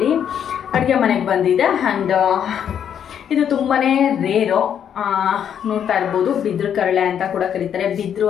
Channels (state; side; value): quieter; right; 8.8 dB